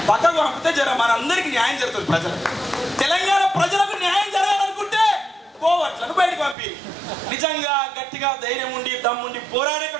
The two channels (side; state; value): left; drops out; at 6.6 s